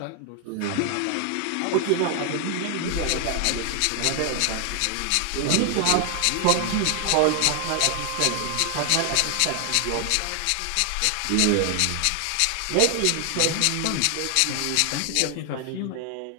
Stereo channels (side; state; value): both; different; correlation 0.00